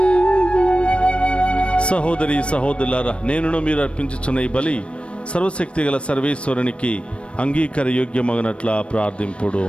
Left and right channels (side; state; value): right; late; 0.059 ms